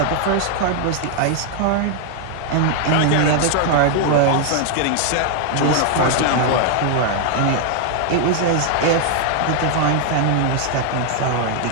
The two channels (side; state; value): both; different; correlation 0.00